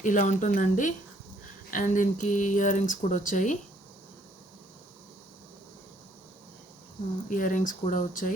ఇలా ఉంటుందండి. అండ్ దీనికి ఇయర్ రింగ్స్ కూడా వచ్చాయి.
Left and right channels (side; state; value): both; normal; correlation 0.65